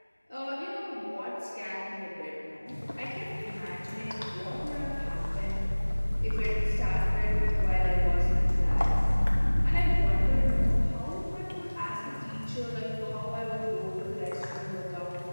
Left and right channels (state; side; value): inverted; both; correlation -1.00